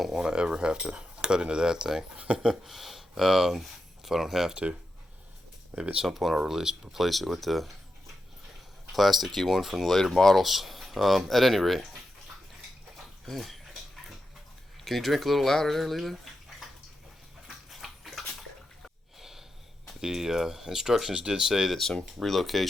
want to ever have to cut into that thing. If I don't have to. Maybe at some point I'll replace it with the plasticky one from the later models. At any rate. Hey, can you drink a little louder there, Lila? The instructions did say that some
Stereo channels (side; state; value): both; normal; correlation 0.88